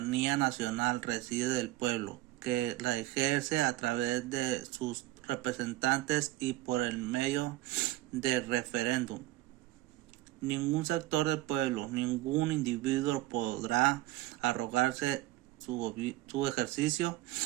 nacional reside del pueblo, que la ejerce a través de sus representantes y por el medio del referéndum. Ningún sector del pueblo, ningún individuo podrá arrogarse su ejercicio.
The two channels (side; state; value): left; quieter; 17.0 dB